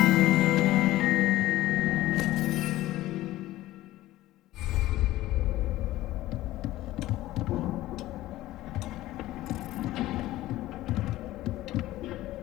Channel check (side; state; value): right; quieter; 16.1 dB